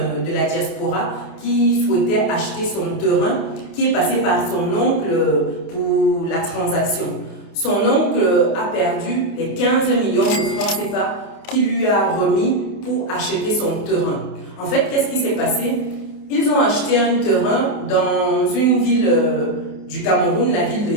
de la diaspora qui souhaitait acheter son terrain, qui est passé par son oncle pour la transaction. Son oncle a perdu les 15 millions de francs CFA qu'il lui a remis pour acheter son terrain. En fait, qu'est-ce qui s'est passé? Ils ont acheté un terrain dans une ville du Cameroun, la ville de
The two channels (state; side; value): late; right; 28 ms